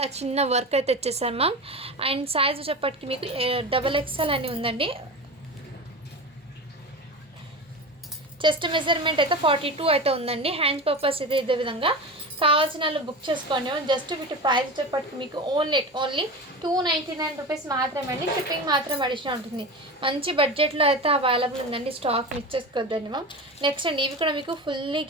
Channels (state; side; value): normal; both; correlation 0.27